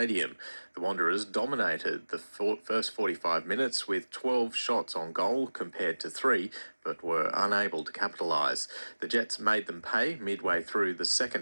The Wanderers dominated the first 45 minutes with 12 shots on goal compared to 3, but were unable to capitalise. The Jets made them pay midway through the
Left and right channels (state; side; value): inverted; both; correlation -1.00